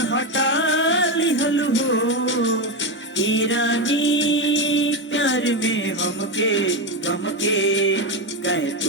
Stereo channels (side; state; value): both; normal; correlation 0.12